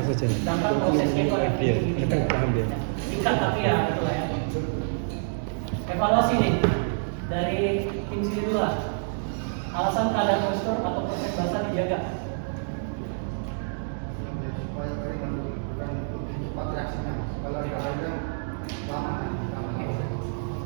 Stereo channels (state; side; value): silent; left; 60 dB below the other